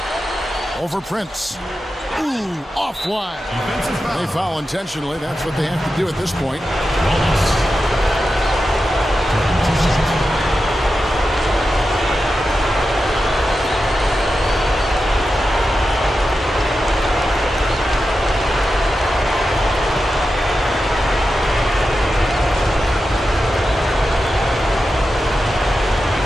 Over Prince. Ooh, off wide. They foul intentionally. That's what they have to do at this point.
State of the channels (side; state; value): both; normal; correlation 0.91